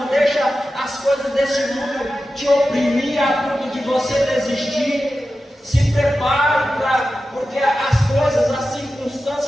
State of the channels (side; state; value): both; normal; correlation 0.93